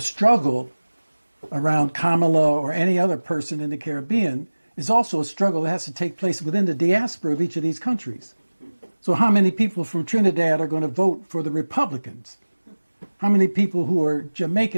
around Kamala or any other person in the Caribbean is also a struggle that has to take place within the diaspora of each of these countries. So how many people from Trinidad are going to vote for the Republicans? How many people who are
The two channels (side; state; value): both; inverted; correlation -1.00